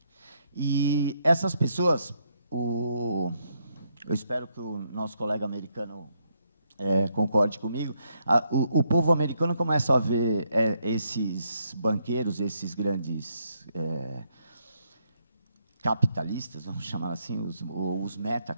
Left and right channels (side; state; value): both; inverted; correlation -0.75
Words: E essas pessoas, eu espero que o nosso colega americano concorde comigo, o povo americano começa a ver esses banqueiros, esses grandes capitalistas, vamos chamar assim, os